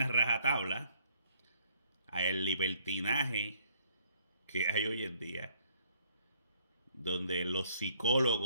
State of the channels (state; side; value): inverted; both; correlation -0.65